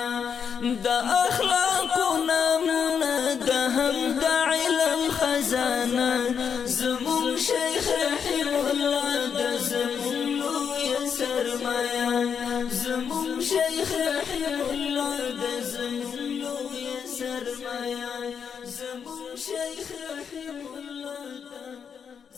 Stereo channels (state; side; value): quieter; right; 7.0 dB